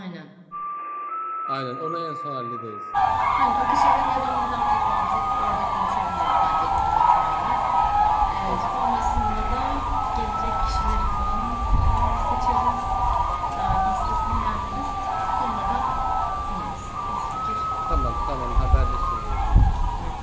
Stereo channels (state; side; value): identical; both; correlation 1.00